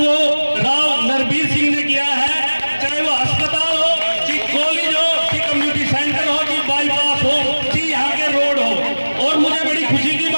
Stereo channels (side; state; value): both; inverted; correlation -1.00